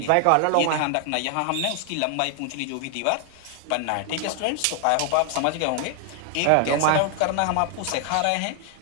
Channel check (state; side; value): different; both; correlation 0.00